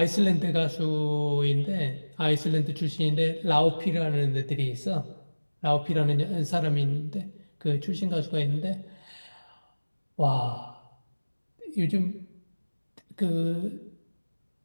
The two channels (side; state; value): both; inverted; correlation -1.00